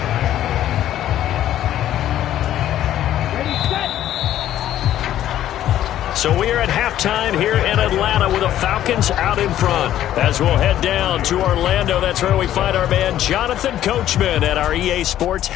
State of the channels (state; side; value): quieter; right; 12.1 dB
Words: So we are at halftime here in Atlanta with the Falcons out in front. As we'll head down to Orlando, that's where we find our man Jonathan Coachman at our EA Sports